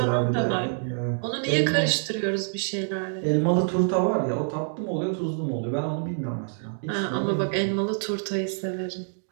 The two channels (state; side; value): silent; left; digital silence